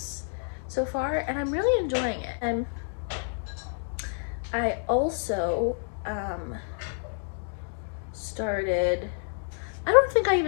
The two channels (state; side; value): silent; right; digital silence